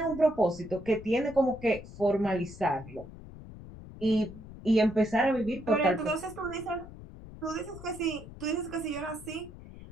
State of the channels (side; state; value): left; noise; rumble, 15 dB below the sound